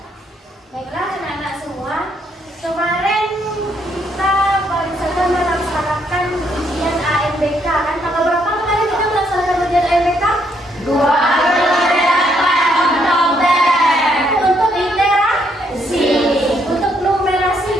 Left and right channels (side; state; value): both; normal; correlation 0.72